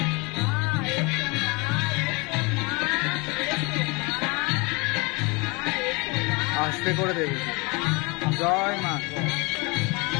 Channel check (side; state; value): right; quieter; 27.7 dB